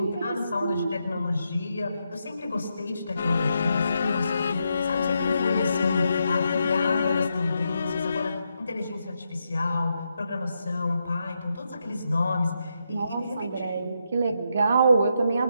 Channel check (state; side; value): inverted; both; correlation -0.82